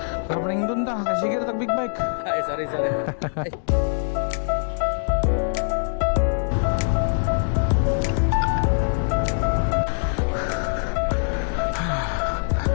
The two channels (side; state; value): right; silent; digital silence